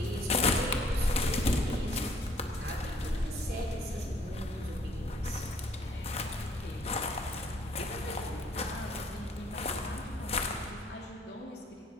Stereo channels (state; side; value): normal; both; correlation 0.62